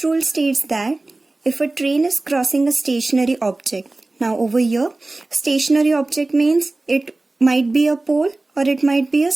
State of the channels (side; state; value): left; quieter; 3.0 dB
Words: rule states that if a train is crossing a stationary object. Now over here stationary object means it might be a pole or it might be a